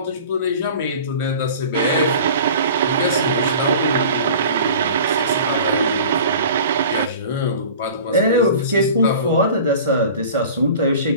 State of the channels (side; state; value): both; inverted; correlation -0.41